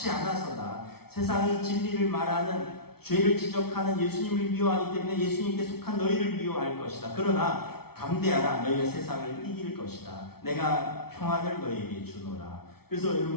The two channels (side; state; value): right; late; 0.95 ms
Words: 않아서다. 세상이 진리를 말하는, 죄를 지적하는 예수님을 미워하기 때문에 예수님께 속한 너희를 미워할 것이다. 그러나 담대하라. 너희가 세상을 이길 것이다. 내가 평안을 너희에게 주노라. 그래서